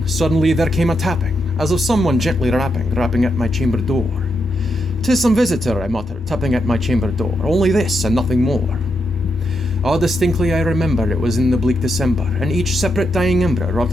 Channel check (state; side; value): normal; both; correlation 0.83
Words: suddenly there came a tapping, as of someone gently rapping at my chamber door. "'Tis some visitor," I muttered, tapping at my chamber door, "only this, and nothing more." Ah, distinctly I remember it was in the bleak December, and each separate dying ember wrought